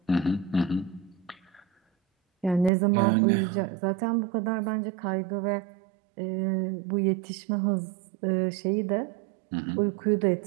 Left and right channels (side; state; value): left; drops out; at 2.7 s